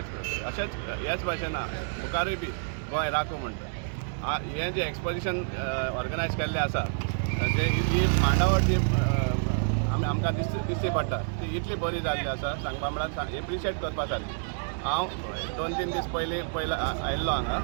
अशेंच ह्याच भाशेन मुखारूय बी गोंय राखूं म्हणटा. हें जें एक्सपोजिशन ऑर्गनायज केल्लें आसा जे ही मांडावळ जी आमकां दिसची पडटा ती इतली बरी जाल्ली आसा सांगपा म्हळ्यार एप्रिशिएट करपा सारकी. हांव 2-3 दीस पयलीं आयिल्लो हांगा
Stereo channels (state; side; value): silent; left; digital silence